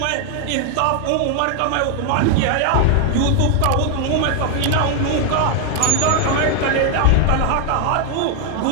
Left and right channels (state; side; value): different; both; correlation 0.01